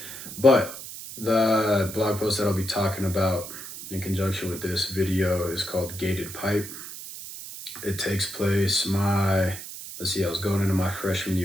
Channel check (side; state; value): right; noise; hiss, 11 dB below the sound